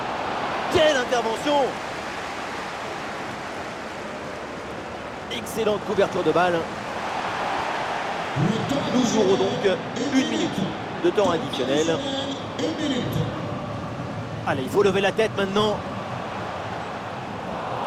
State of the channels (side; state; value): both; identical; correlation 1.00